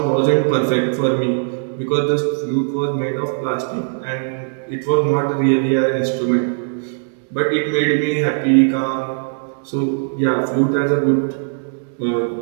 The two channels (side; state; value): left; silent; digital silence